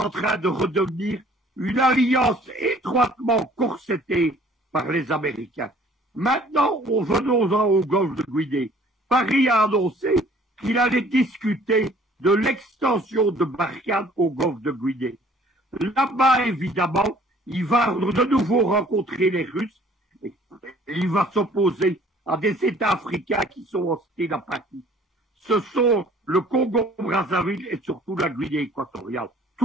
train de redevenir une alliance étroitement corsetée par les Américains. Maintenant, venons-en au golfe de Guinée. Paris a annoncé qu'il allait discuter de l'extension de Barkhane au golfe de Guinée. Là-bas, évidemment, il va de nouveau rencontrer les Russes. Il va s'opposer à des États africains qui sont hostiles à Paris. Ce sont le Congo-Brazzaville et surtout la Guinée équatoriale.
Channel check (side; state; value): both; normal; correlation 0.55